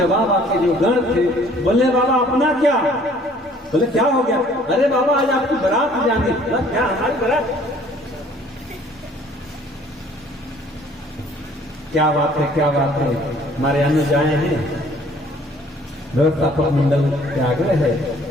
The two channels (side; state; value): both; normal; correlation 0.56